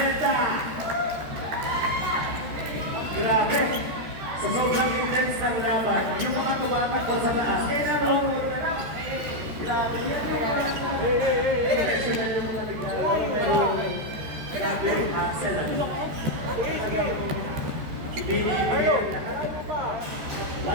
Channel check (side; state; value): left; late; 13 ms